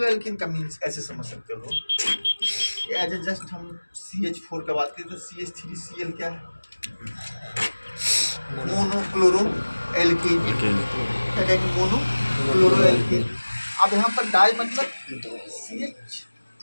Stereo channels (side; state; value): both; inverted; correlation -1.00